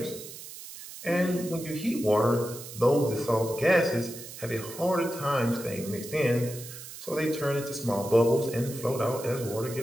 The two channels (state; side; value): noise; right; hiss, 13 dB below the sound